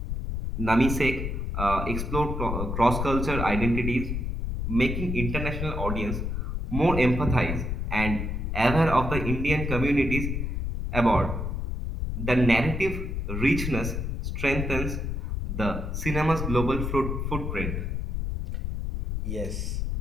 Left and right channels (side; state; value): left; noise; rumble, 2 dB below the sound